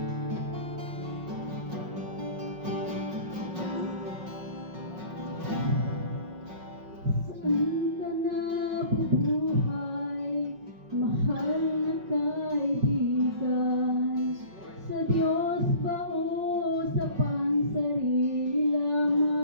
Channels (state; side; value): late; left; 5.4 ms